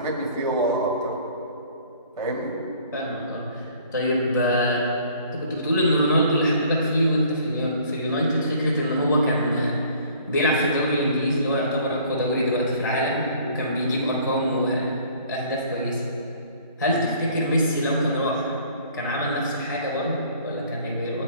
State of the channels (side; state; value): both; inverted; correlation -0.55